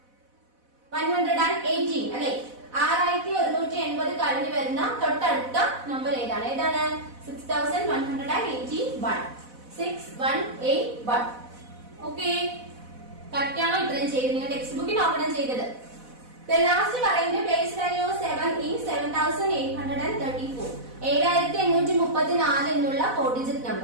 അല്ലെ 6180 കഴിഞ്ഞു വരുന്ന തൊട്ടടുത്ത നമ്പർ ഏതാണ്? 6181 6181. ഓക്കെ. കറക്റ്റ് ആണോ? ഇത്രയും ചെയ്ത് നിങ്ങൾ ടെക്സ്റ്റ് ബുക്കിൽ നോക്കണം ചെയ്തത്. ലാസ്റ്റ് പറയുന്നത് പ്ലേസ് വാല്യൂ 7 in 7834 7834 എന്നുള്ള 4 ഡിജിറ്റ്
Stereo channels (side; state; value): left; late; 4.0 ms